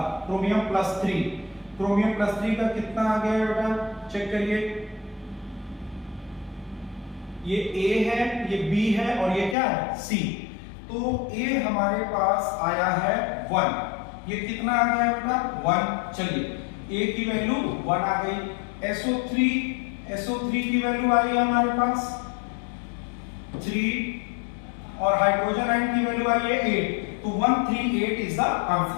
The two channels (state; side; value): drops out; right; at 9.6 s